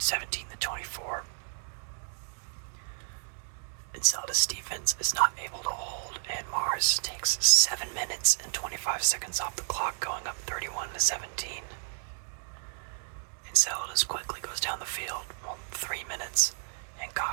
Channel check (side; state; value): left; silent; digital silence